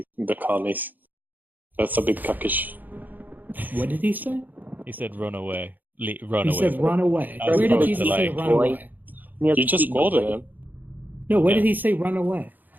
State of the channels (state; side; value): late; left; 0.085 ms